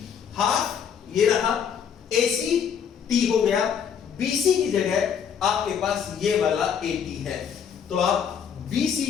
हाफ ये रहा, AC T हो गया, BC की जगह आपके पास ये वाला AT है, तो आप BC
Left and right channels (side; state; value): right; quieter; 7.6 dB